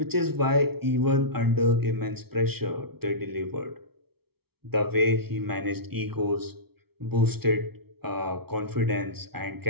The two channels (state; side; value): late; left; 0.96 ms